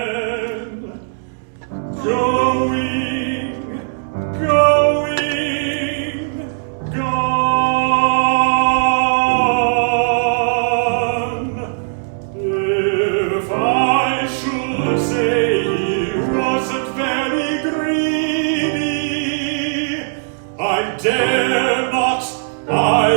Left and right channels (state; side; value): silent; left; 67 dB below the other